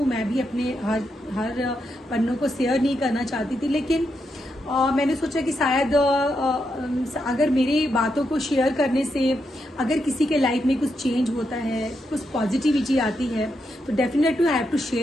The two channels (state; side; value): normal; both; correlation 0.83